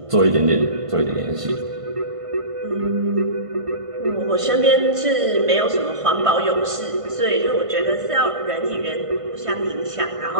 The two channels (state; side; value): late; left; 1.5 ms